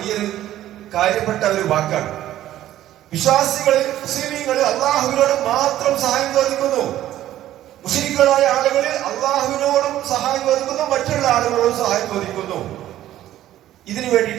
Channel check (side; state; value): left; quieter; 13.2 dB